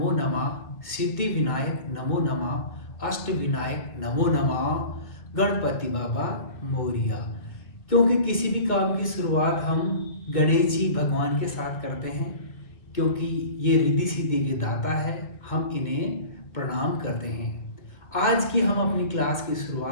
Nama Siddhi Vinayak Namo Nama अष्ट विनायक नमो नमः गणपति बाबा मोरिया। क्योंकि किसी भी काम की शुरुआत हम गणेश जी भगवान के साथ करते हैं, क्योंकि ये रिद्धि सिद्धि के दाता है, हम इन्हें प्रणाम करते हैं। आज की हम अपनी क्लास की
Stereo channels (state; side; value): late; right; 2.1 ms